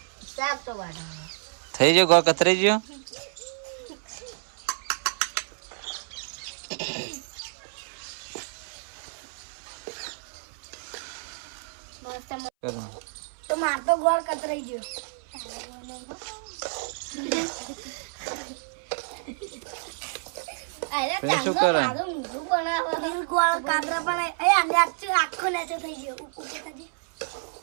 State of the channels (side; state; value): left; silent; 59 dB below the other